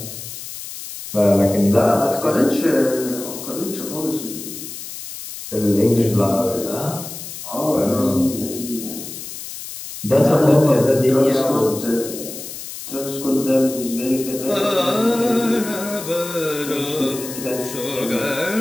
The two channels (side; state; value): left; noise; hiss, 10 dB below the sound